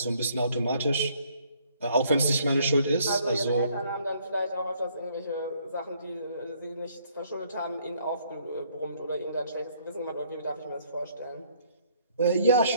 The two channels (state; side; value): inverted; both; correlation -0.64